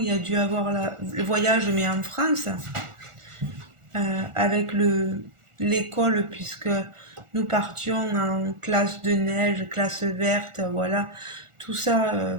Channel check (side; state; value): left; late; 1.4 ms